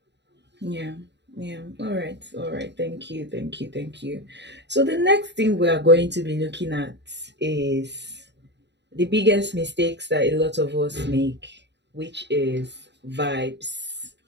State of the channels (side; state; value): left; late; 0.51 ms